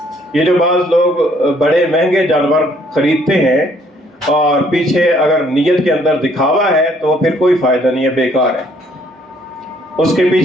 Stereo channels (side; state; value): both; normal; correlation 0.64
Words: یہ جو بعض لوگ بڑے مہنگے جانور خریدتے ہیں اور پیچھے اگر نیت کے اندر دکھاوا ہے تو پھر کوئی فائدہ نہیں ہے، بیکار ہے۔ اس کے